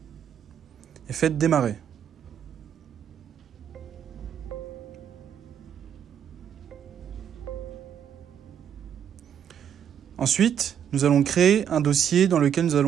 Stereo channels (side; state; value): left; quieter; 8.9 dB